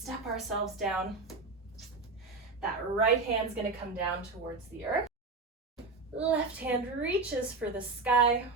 ourselves down. That right hand's gonna come down towards the earth. Left hand reaches for the sky,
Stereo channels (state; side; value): quieter; left; 3.8 dB